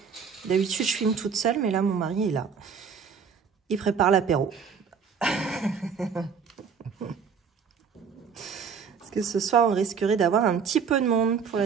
D'habitude, je filme toute seule, mais là, mon mari est là. Il prépare l'apéro. Parce que ce soir, on risquerait d'avoir un petit peu de monde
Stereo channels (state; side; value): quieter; left; 6.3 dB